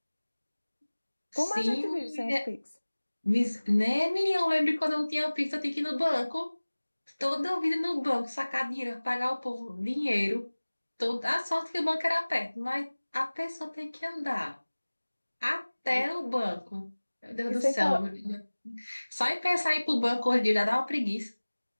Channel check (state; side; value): inverted; both; correlation -1.00